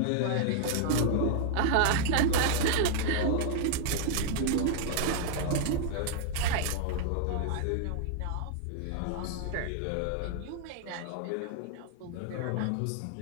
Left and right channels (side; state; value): both; different; correlation -0.01